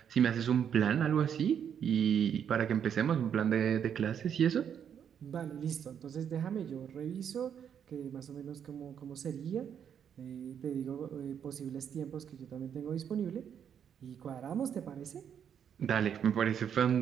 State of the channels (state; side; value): quieter; left; 8.4 dB